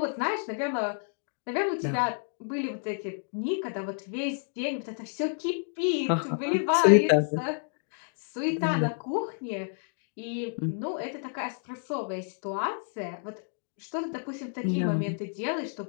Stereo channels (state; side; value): silent; right; 58 dB below the other